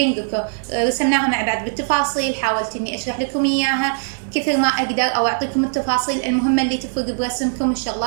رسمناها مع بعض بالتفاصيل، حاولت إني أشرح لكم إياها كثر ما أقدر أو أعطيكم التفاصيل المهمة اللي تفرق برسمكم،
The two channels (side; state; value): left; silent; digital silence